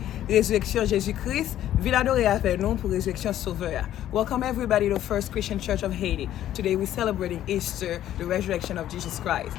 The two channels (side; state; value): right; quieter; 12.2 dB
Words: la résurrection de Jésus-Christ. Ville adorée avec nous pour la résurrection sauveur. Welcome everybody to First Christian Church of Haiti. Today we're celebrating Easter, the resurrection of Jesus Christ.